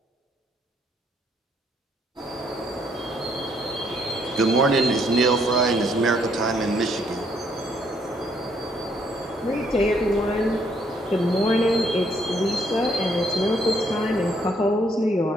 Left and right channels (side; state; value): both; normal; correlation 0.70